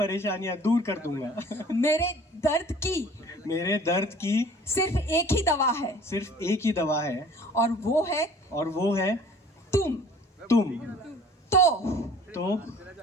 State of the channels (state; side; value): normal; both; correlation 0.50